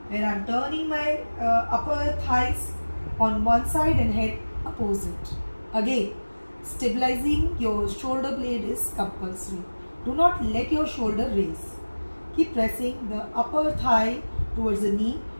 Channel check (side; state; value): both; inverted; correlation -1.00